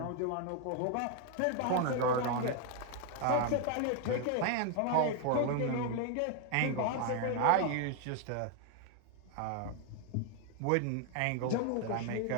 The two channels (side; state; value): both; different; correlation 0.01